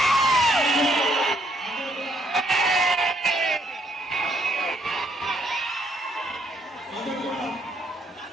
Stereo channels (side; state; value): both; normal; correlation 0.70